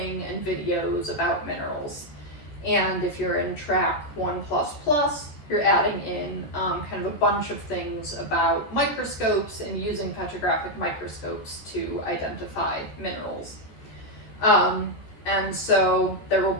and videos about minerals. And if you're in track 1++, you're adding in kind of a bunch of things about microscopes and using petrographic microscopes to identify minerals. And so there will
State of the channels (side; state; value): right; late; 13 ms